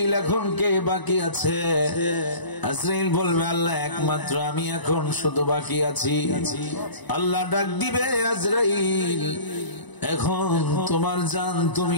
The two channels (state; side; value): late; right; 1.0 ms